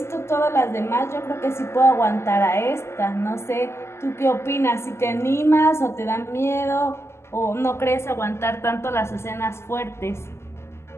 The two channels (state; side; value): late; right; 0.13 ms